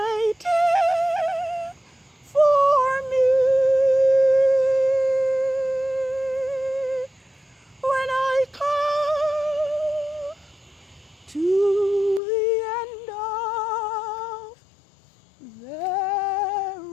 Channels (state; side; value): drops out; right; at 12.2 s